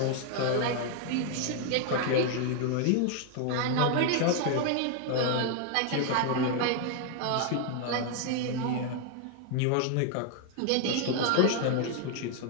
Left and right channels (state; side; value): different; both; correlation 0.00